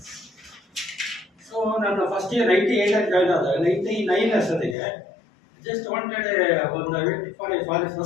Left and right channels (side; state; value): right; drops out; at 4.8 s